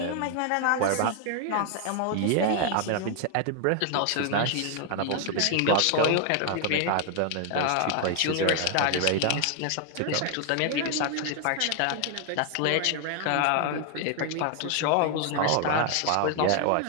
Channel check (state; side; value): different; both; correlation 0.00